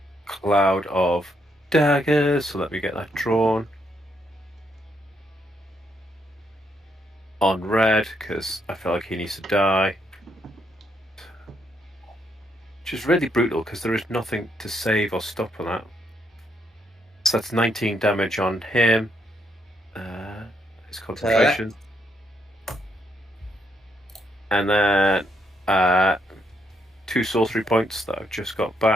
cloud of daggers. So let me get that drawn on red because I feel like he needs to die. Which is really brutal because there is nothing to save or stop on that. So that's 19 damage on him. His concentration. And then 2 sorcery points that I've just got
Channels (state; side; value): normal; both; correlation 0.76